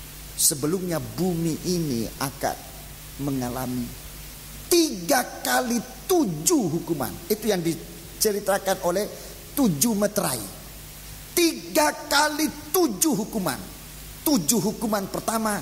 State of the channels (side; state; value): both; identical; correlation 1.00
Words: sebelumnya bumi ini akan mengalami 3 kali 7 hukuman. Itu yang diceritakan oleh 7 meterai. 3 kali 7 hukuman. 7 hukuman